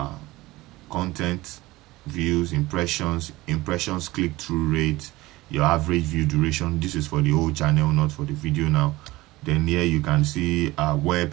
content, views, impressions, click-through rate, your average view duration. This is for the whole channel, not for the video now. Then here you can see where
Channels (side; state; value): left; quieter; 19.4 dB